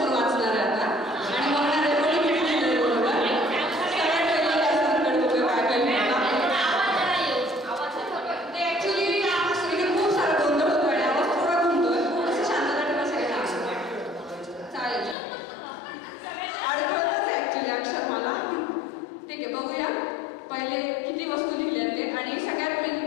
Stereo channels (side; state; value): right; drops out; at 15.2 s